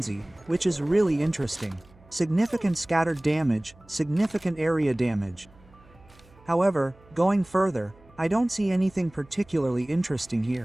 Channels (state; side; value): noise; right; hum, 27 dB below the sound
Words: which is really interesting. Significant scattered damage, significant area damage. However, going further, I don't see anything particularly interesting